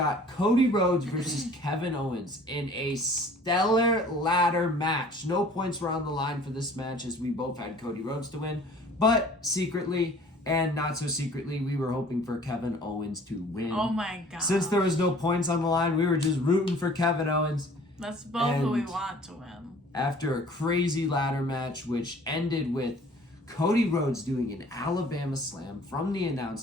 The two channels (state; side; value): normal; both; correlation 0.51